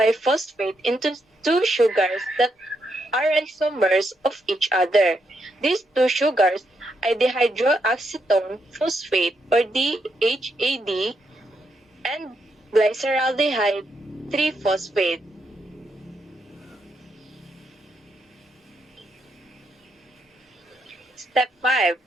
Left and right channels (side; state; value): both; normal; correlation 0.80